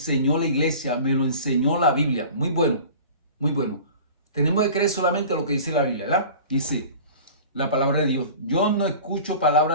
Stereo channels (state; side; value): inverted; both; correlation -0.40